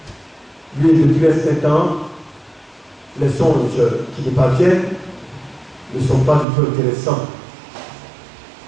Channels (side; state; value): left; drops out; at 6.5 s